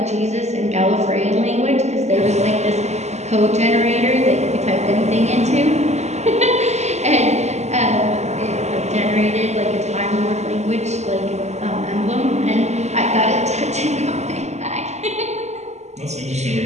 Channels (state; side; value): late; left; 0.33 ms